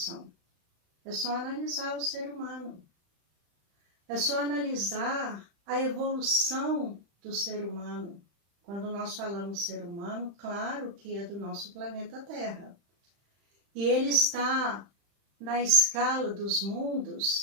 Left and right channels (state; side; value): late; left; 35 ms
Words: É só analisar o ser humano. É só analisar a evolução do ser humano. Quando nós falamos ser humano, claro que é do nosso planeta Terra. E ele está na escala dos